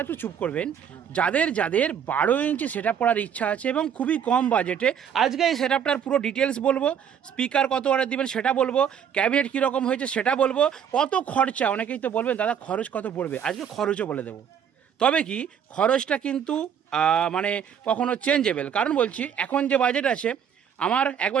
একটু চুপ করবেন, যাদের 12 ইঞ্চি সেটআপ করার ইচ্ছা আছে এবং খুবই কম বাজেটে, আজকে এই সেটআপটার পুরো ডিটেলস বলবো। স্পিকার কত অর্ডার দিবেন সেটা বলবো, ক্যাবিনেট কীরকম হয়েছে সেটা বলবো, কত খরচা। অনেকেই তো বলবেন দাদা খরচ কত পড়বে, আজকে খরচও বলে দেবো। তবে কি খরচটা কিন্তু মানে কখনো চেঞ্জেবল, কারণ বলছি এখন যে বাজেট আছে, আমার 1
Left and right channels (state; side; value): quieter; left; 8.3 dB